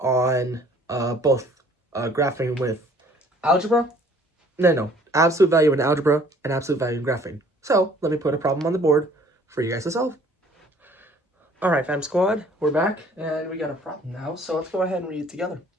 on both graphing with algebra, absolute value in algebra and absolute value in graphing. So let me put a problem on the board for you guys to solve. All right, FEM Squad, we're back and we got a problem now. So let's go ahead and read it together.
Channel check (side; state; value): both; normal; correlation 0.56